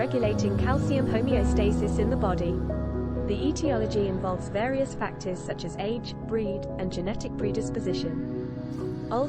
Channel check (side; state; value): both; identical; correlation 1.00